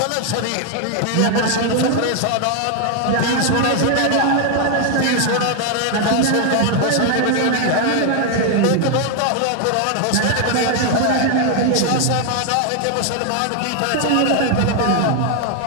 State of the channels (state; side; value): different; both; correlation 0.00